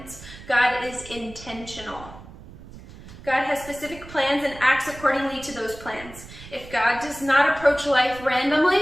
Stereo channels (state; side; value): noise; right; rumble, 17 dB below the sound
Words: God is intentional. God has specific plans and acts accordingly to those plans. If God does not approach life